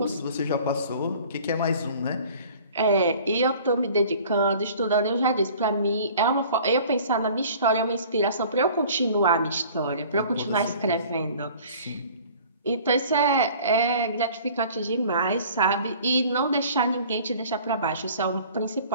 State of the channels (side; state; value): both; inverted; correlation -0.48